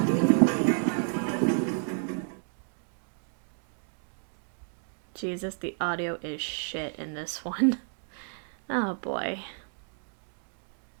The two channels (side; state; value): left; silent; 57 dB below the other